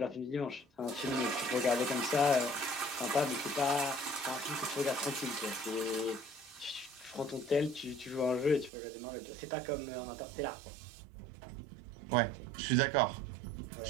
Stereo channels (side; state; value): left; drops out; at 8.7 s